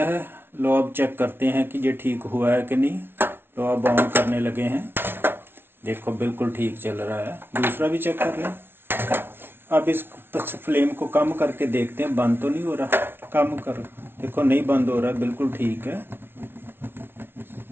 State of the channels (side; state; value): left; late; 0.11 ms